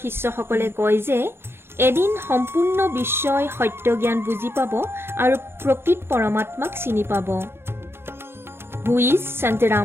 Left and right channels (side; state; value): left; late; 0.11 ms